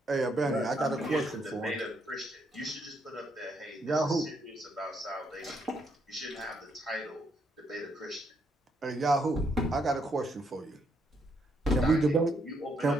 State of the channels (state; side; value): normal; both; correlation 0.75